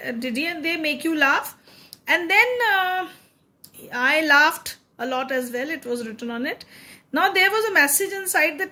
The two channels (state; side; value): identical; both; correlation 1.00